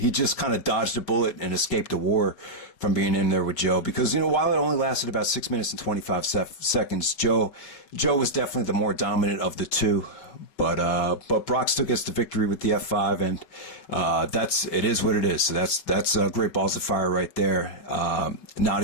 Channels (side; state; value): right; late; 5.4 ms